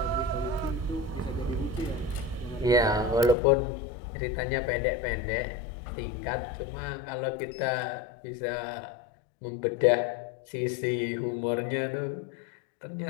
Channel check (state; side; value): drops out; right; at 3.4 s